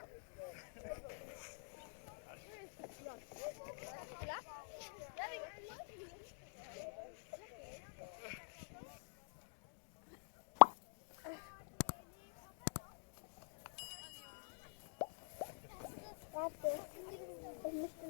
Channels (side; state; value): right; silent; digital silence